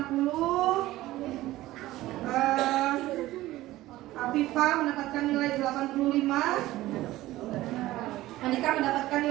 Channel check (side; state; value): left; quieter; 16.5 dB